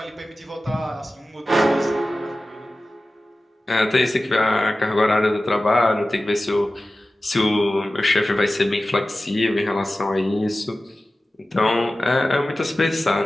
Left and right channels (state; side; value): normal; both; correlation 0.95